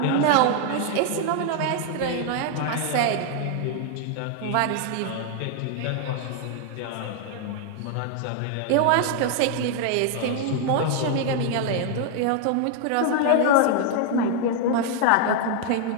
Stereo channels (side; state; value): both; different; correlation 0.00